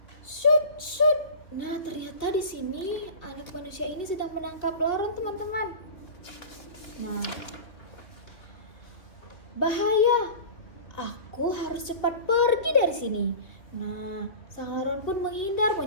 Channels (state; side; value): late; right; 2.6 ms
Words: Shoot. Nah, ternyata di sini anak manusia ini sedang menangkap laron, teman-teman. Nah, bahaya. Aku harus cepat pergi dari sini. Nah, sang laron pun